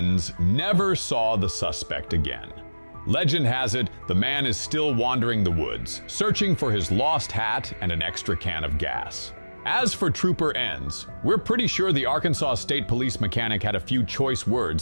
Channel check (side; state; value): both; inverted; correlation -1.00